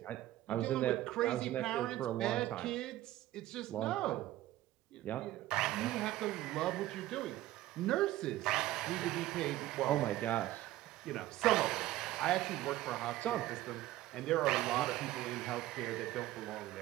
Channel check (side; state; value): left; quieter; 15.4 dB